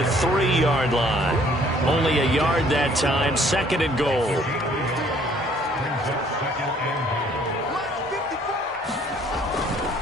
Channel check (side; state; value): both; normal; correlation 0.60